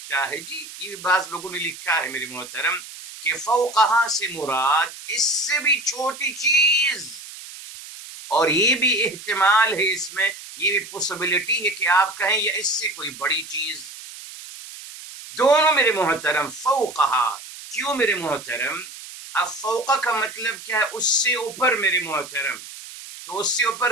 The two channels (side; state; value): right; noise; hiss, 14 dB below the sound